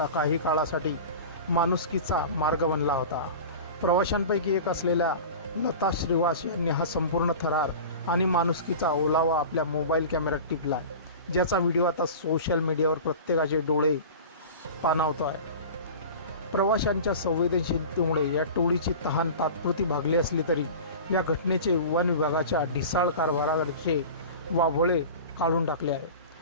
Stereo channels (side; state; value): both; inverted; correlation -0.35